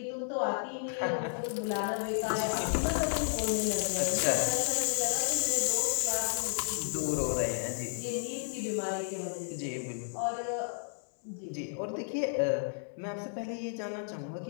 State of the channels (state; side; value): silent; right; digital silence